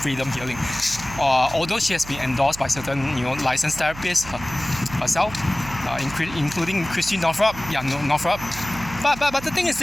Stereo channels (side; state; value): right; noise; hum, 14 dB below the sound